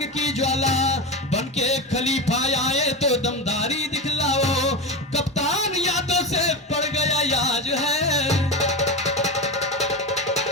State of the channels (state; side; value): normal; both; correlation 0.19